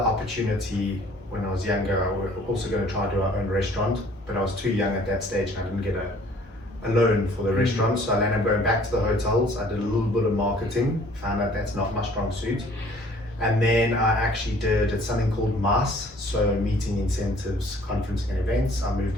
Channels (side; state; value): both; normal; correlation 0.55